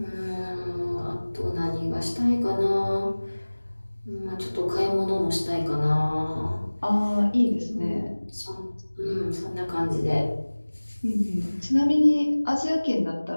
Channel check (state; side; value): inverted; both; correlation -1.00